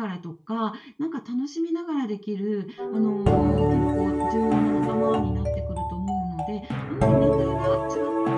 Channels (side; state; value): both; identical; correlation 1.00